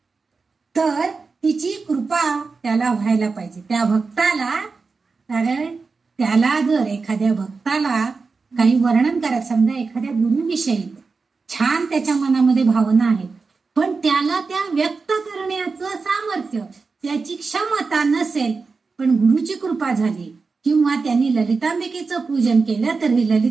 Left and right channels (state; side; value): quieter; left; 4.5 dB